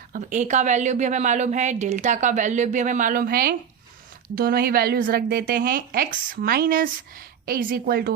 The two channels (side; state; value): left; quieter; 7.9 dB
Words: अब a का वैल्यू भी हमें मालूम है, डेल्टा का वैल्यू भी हमें मालूम है, दोनों ही वैल्यूज रख देते हैं. x minus a is equal